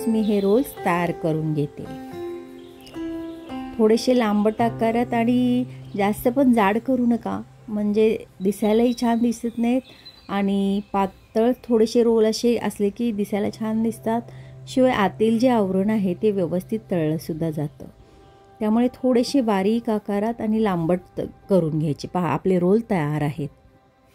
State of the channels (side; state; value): both; identical; correlation 1.00